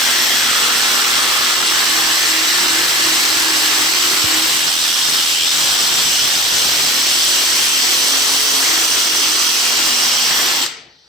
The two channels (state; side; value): normal; both; correlation 0.37